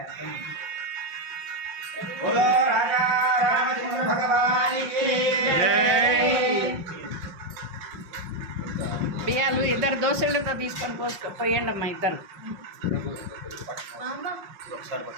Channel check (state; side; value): late; left; 5.6 ms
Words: बोलो राजा रामचंद्र भगवान की బియ్యాలు ఇద్దరు దోశలతో తీసుకొని పోయండి అమ్మా ఇద్దరు